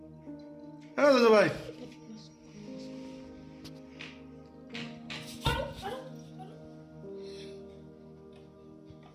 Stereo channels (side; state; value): both; identical; correlation 1.00